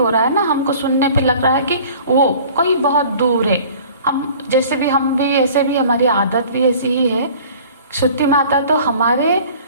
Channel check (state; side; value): inverted; both; correlation -0.47